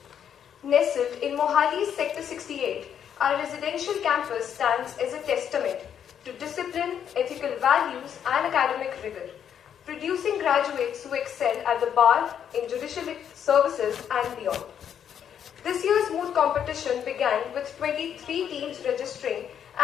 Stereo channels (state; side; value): quieter; right; 8.7 dB